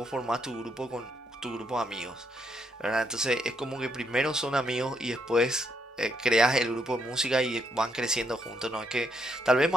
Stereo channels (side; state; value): both; normal; correlation 0.76